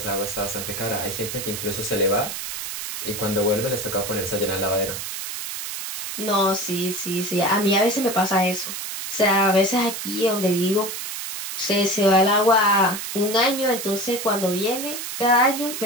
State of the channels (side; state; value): right; noise; hiss, 6 dB below the sound